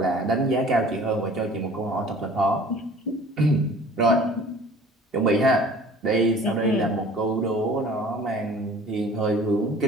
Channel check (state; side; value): normal; both; correlation 0.47